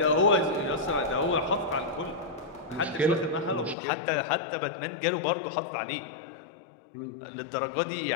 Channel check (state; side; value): drops out; right; at 3.8 s